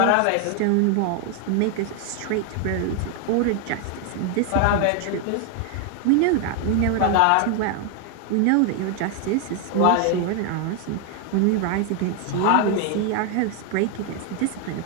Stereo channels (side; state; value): both; different; correlation 0.00